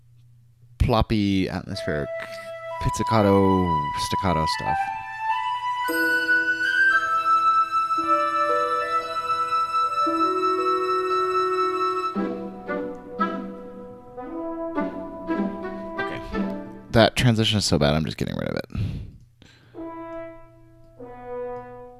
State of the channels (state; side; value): identical; both; correlation 1.00